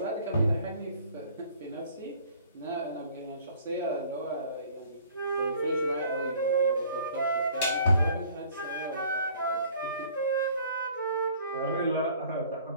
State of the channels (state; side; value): inverted; both; correlation -0.54